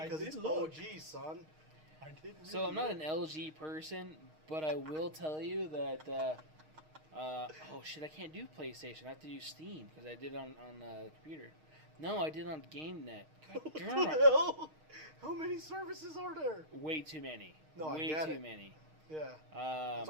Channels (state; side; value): late; left; 6.4 ms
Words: because did it's look. OG, son. I did. So I'm not an LG person, but I will tell you that. Oh shit! I can't do PlayStation. I have to do Steam because I did it on the computer. No, I did it on GameNet. God What damn the it. hell? How many services are there? Way too many. No, I Way get too it. many. Yeah. That's